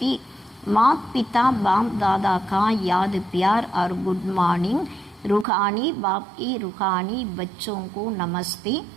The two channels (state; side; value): drops out; left; at 5.5 s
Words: माता पिता बाप दादा का याद प्यार और गुड मॉर्निंग. रूहानी बाप की रूहानी बच्चों को नमस्ते,